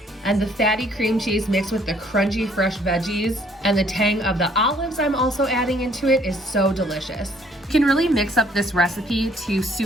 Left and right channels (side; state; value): both; normal; correlation 0.63